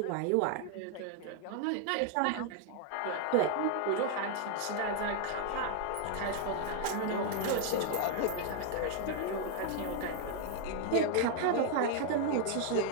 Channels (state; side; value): different; both; correlation 0.00